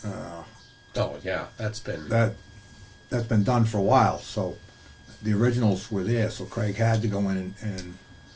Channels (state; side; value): identical; both; correlation 1.00